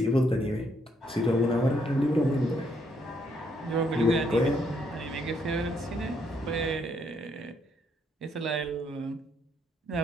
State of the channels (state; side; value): normal; both; correlation 0.72